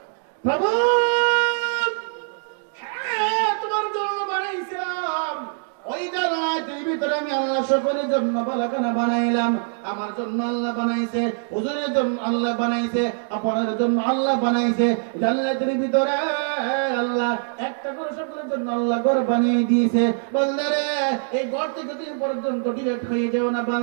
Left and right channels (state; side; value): silent; left; digital silence